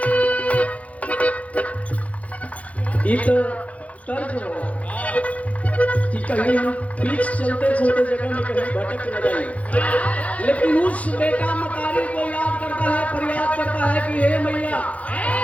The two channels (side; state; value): right; late; 0.067 ms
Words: ये तो तर्क हो कि कहीं हम बीच चलते चलते जगह में कहीं भटक न जाए, लेकिन उस बेटा मतारी को याद करता है, फरियाद करता है कि हे मैया,